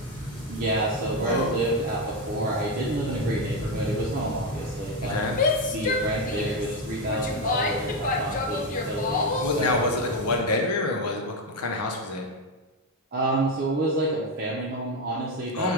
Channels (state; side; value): normal; both; correlation 0.09